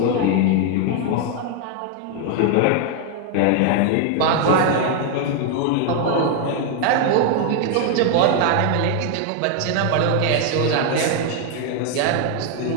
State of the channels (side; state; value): both; different; correlation 0.00